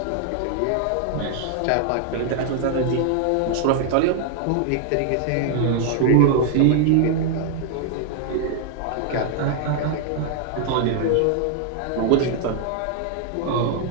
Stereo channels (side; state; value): both; different; correlation -0.01